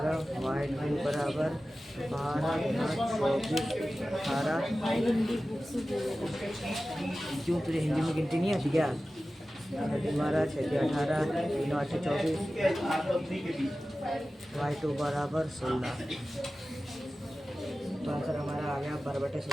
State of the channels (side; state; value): both; normal; correlation 0.95